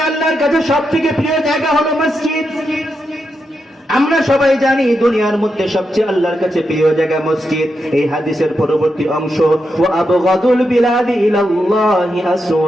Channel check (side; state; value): both; normal; correlation 0.85